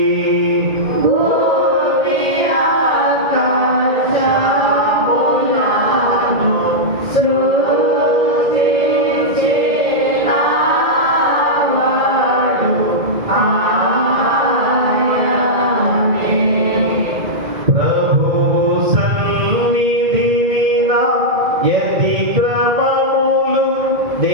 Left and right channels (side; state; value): left; late; 2.0 ms